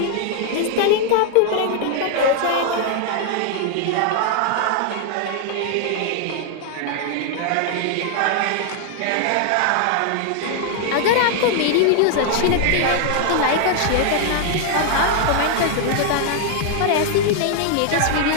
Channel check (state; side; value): different; both; correlation 0.00